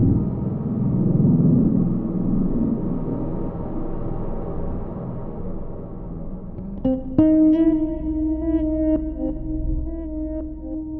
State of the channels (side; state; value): both; identical; correlation 1.00